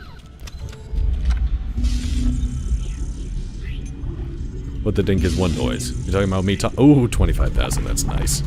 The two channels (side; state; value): both; identical; correlation 1.00